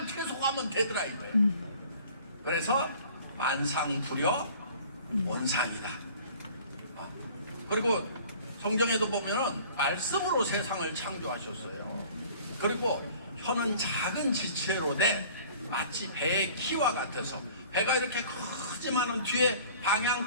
계속하면 되더라 이거예요. 그래서 만상불효 온상이다. 그리고 성경에도 보면은 말씀으로 세상을 창조하셨어요. 그리고 혀는 작은 지체로 돼 마치 배의 키와 같아서, 배가 이렇게 크지만은 뒤에 방향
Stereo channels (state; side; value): inverted; both; correlation -0.49